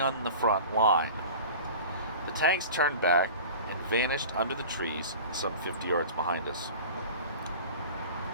the front line. The tanks turned back and vanished under the trees some 50 yards behind us.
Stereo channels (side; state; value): both; inverted; correlation -0.38